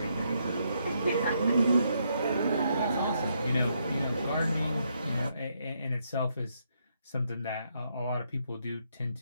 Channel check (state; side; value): inverted; both; correlation -0.76